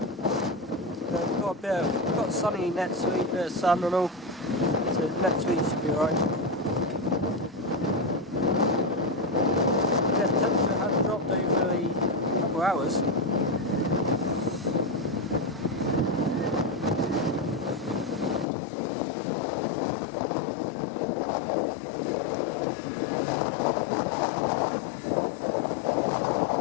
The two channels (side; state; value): right; drops out; at 18.4 s